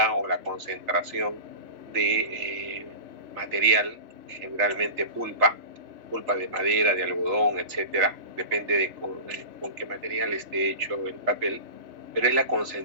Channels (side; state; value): left; late; 3.4 ms